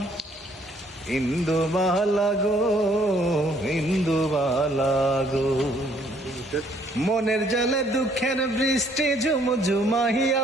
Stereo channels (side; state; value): both; normal; correlation 0.64